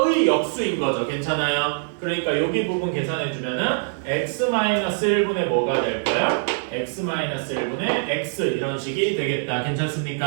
역수인 거죠. 괜찮아요? 그러니까 여기 부분 계산해주면은 x-1분의 뭐가 될 거야? x-1분의 x 이런 식이 되겠다.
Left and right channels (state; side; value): silent; left; digital silence